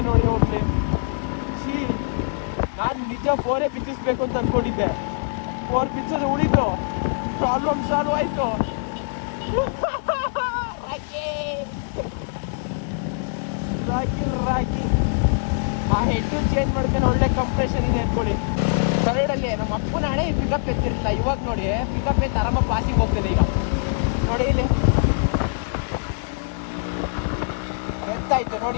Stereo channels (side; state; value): right; silent; 63 dB below the other